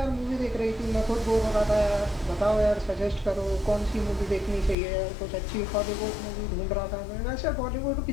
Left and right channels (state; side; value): drops out; right; at 4.8 s